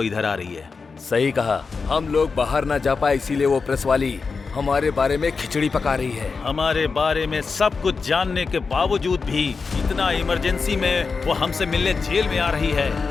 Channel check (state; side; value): quieter; right; 4.8 dB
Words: इधर आ रही है। सही कहा, हम लोग बाहर ना जा पाए इसीलिए वो प्रेस वाली हमारे बारे में खिचड़ी पका रही है। हमारे बारे में सब कुछ जानने के बावजूद भी इतना इमरजेंसी में वो हमसे मिलने जेल में आ रही है।